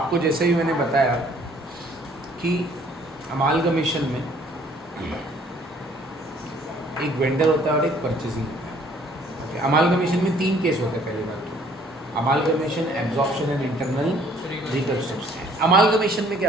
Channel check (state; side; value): normal; both; correlation 0.59